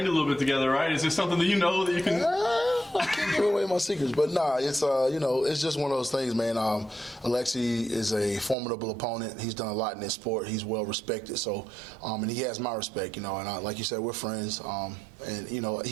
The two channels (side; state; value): left; drops out; at 8.6 s